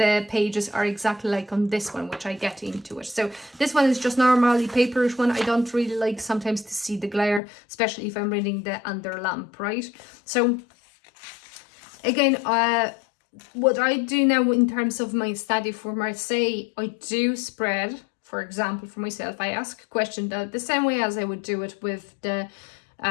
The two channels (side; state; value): right; drops out; at 7.4 s